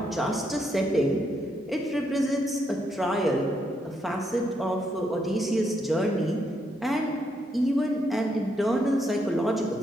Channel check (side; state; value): both; normal; correlation 0.77